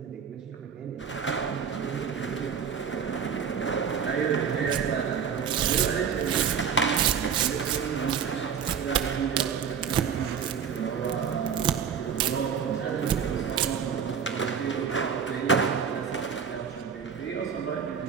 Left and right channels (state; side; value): quieter; left; 7.1 dB